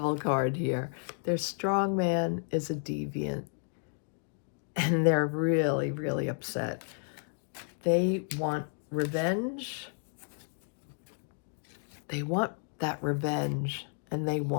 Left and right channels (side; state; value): right; silent; 56 dB below the other